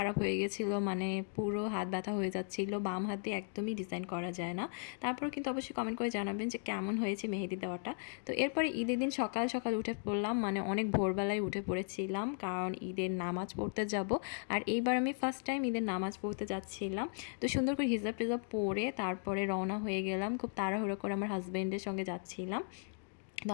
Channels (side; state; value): right; silent; 53 dB below the other